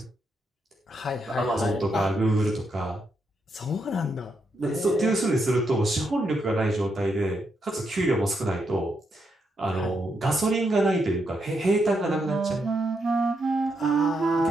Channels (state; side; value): normal; both; correlation 0.80